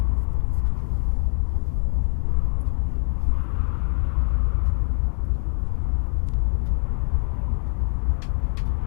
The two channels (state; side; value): silent; right; digital silence